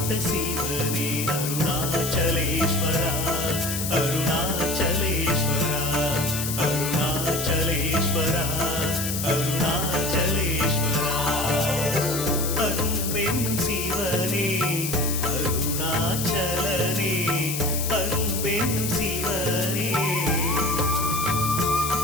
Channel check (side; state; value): left; noise; hiss, 4 dB below the sound